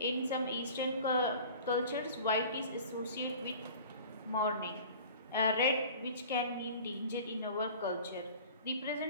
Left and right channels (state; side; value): inverted; both; correlation -0.42